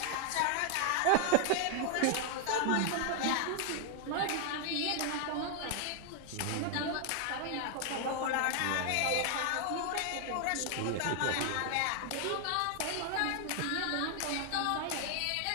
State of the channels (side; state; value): both; different; correlation 0.00